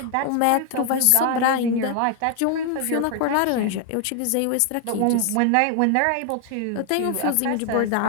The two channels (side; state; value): both; different; correlation 0.00